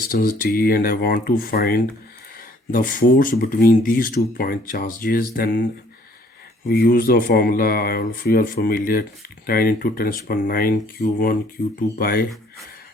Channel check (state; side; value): normal; both; correlation 0.60